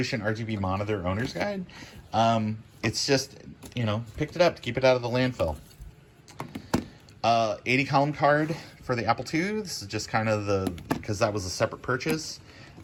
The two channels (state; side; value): identical; both; correlation 1.00